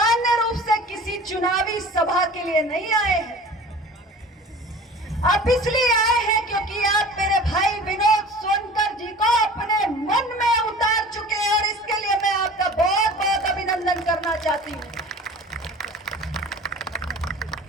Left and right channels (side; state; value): both; normal; correlation 0.41